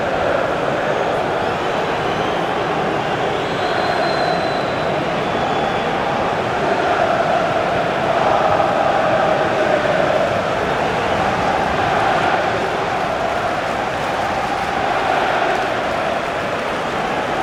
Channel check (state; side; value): identical; both; correlation 1.00